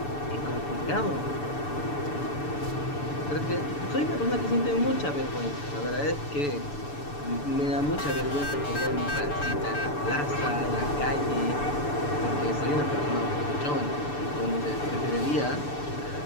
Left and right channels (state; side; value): late; right; 6.9 ms